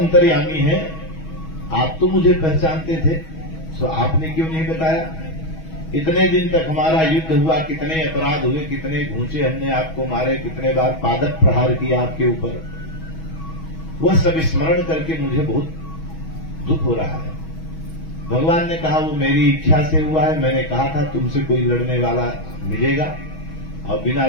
हैं, आप तो मुझे पहचानते थे, तो आपने क्यों नहीं बताया? इतने दिन तक हमारा युद्ध हुआ, कितने अपराध हुए, कितने घूंचे हमने आपको मारे, कितने बार पादप प्रहार किया आपके ऊपर, वह सब स्मरण करके मुझे बहुत दुख हो रहा है। भगवान ने कहा वो मेरी इच्छा से हुआ है, मैंने कहा था तुमसे कोई लड़ने वाला मिलेगा और बिना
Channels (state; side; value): late; right; 6.2 ms